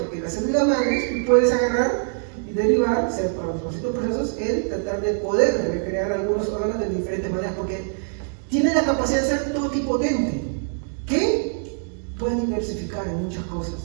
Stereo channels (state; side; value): silent; left; 63 dB below the other